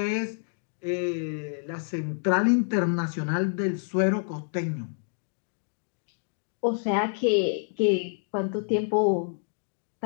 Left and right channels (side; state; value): right; silent; digital silence